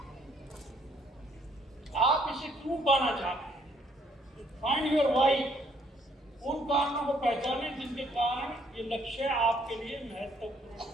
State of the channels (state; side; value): normal; both; correlation 0.65